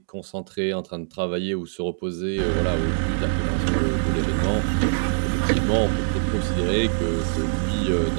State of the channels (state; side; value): silent; left; digital silence